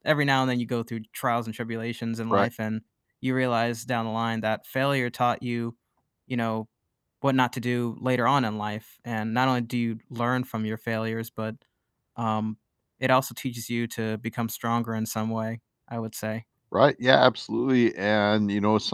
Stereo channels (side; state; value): both; identical; correlation 1.00